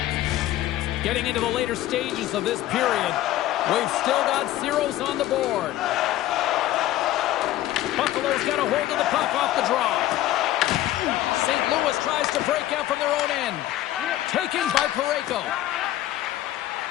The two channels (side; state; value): right; quieter; 14.3 dB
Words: Getting into the later stages of this period, we've still got zeros on the board. Buffalo's got a hold of the puck off the draw. St. Louis tries to break out from their own end. Taken by Parayko.